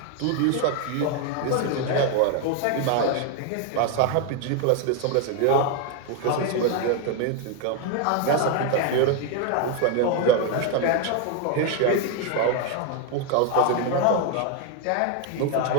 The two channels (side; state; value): both; different; correlation 0.01